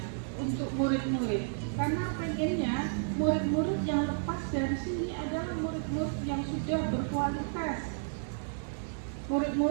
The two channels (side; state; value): left; silent; digital silence